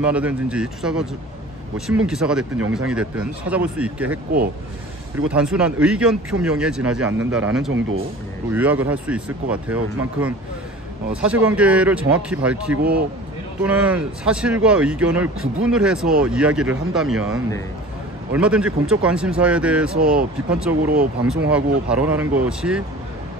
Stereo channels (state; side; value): normal; both; correlation 0.40